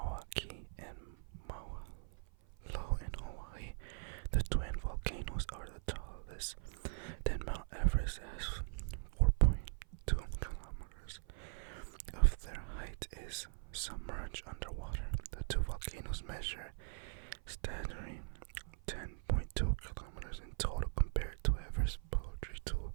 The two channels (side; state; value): left; silent; 50 dB below the other